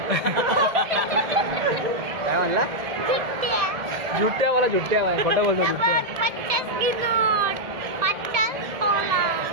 काय म्हणला जुट्ट्यावाला जुट्ट्या भाई खोटं बोलतो जुट्ट्या 50 नोट 50 तोला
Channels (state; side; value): late; left; 1.7 ms